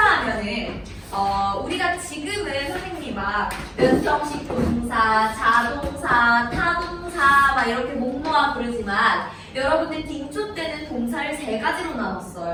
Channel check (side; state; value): both; identical; correlation 1.00